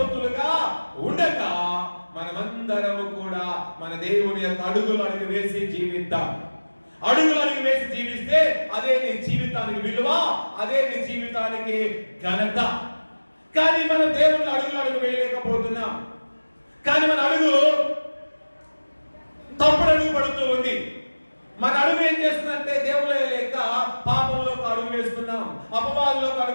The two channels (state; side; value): inverted; both; correlation -1.00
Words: ఉండగా మనమందరము కూడా మన దేవుని యొక్క అడుగులు వేసి జీవిద్దాం. అడుగులు వేసి జీవిస్తే అదే నీ జీవితానికి విలువ, అదే నీ జీవితానికి ఘనత. కానీ మనం దేవుని అడుగు వేయలేకపోతున్నాం. కానీ మన అడుగు తప్పుడు అడుగు పడుతూ ఉంది. మన అడుగు ఏం చేస్తుందంటే దేవుడు లేక పాపంలోకి అడుగు వేస్తున్నాం, అపవాదులోకి